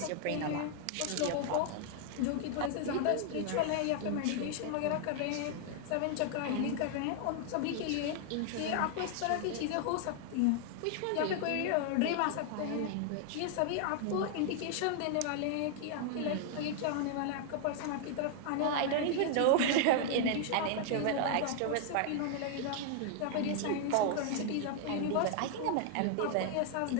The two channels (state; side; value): different; both; correlation 0.00